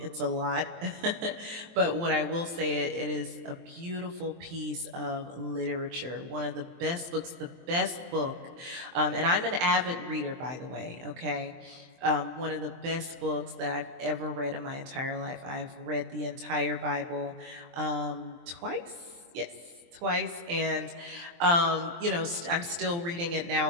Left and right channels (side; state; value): left; late; 23 ms